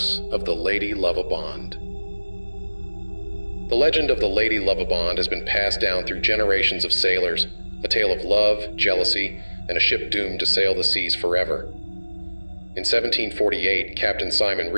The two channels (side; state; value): both; inverted; correlation -1.00